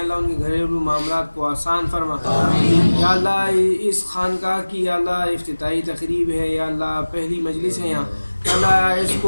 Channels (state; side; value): inverted; both; correlation -1.00